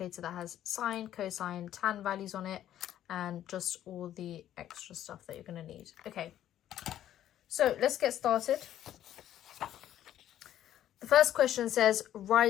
that has sine, cosine, tan values on it and just all the extra stuff that you're going to need. Okay, so let's get started. The first question says,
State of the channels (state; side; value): quieter; right; 11.7 dB